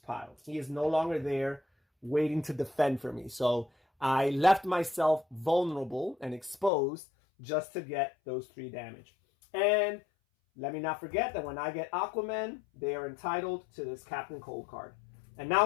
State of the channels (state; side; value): drops out; right; at 6.7 s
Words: pile. He is no longer there waiting to defend for me. So I left myself vulnerable and exposed just to get those 3 damage. And let me not forget that when I get Aquaman, they are entitled to this Captain Cold card. And